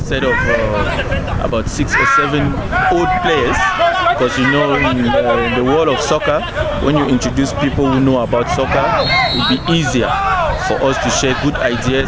set of about 6 or 7 old players, because you know in the world of soccer, when you introduce people who know about soccer, it will be easier for us to share good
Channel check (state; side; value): identical; both; correlation 1.00